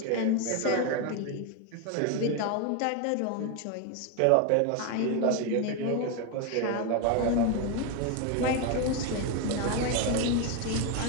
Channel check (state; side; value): different; both; correlation 0.02